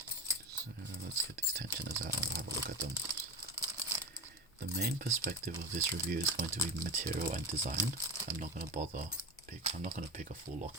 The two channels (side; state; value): both; normal; correlation 0.24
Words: So let's get these tensioners out and we'll have a look at them. The main perspective of this review is going to be material and design. I'm not going to pick a full lock